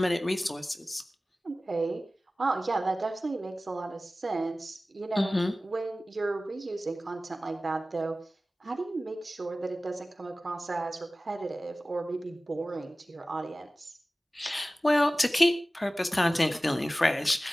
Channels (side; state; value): both; normal; correlation 0.97